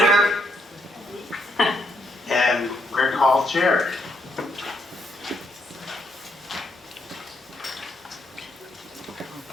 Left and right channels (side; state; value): both; normal; correlation 0.75